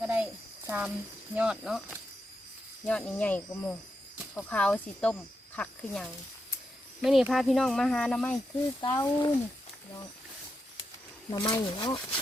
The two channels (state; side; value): normal; both; correlation 0.85